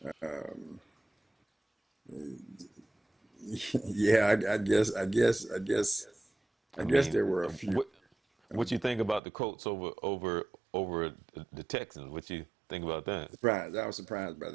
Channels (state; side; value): drops out; left; at 9.2 s